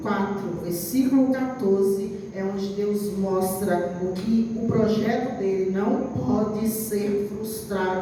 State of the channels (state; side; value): identical; both; correlation 1.00